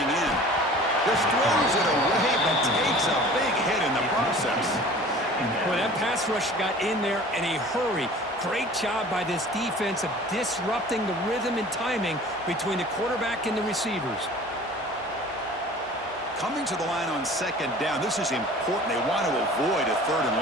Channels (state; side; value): normal; both; correlation 0.44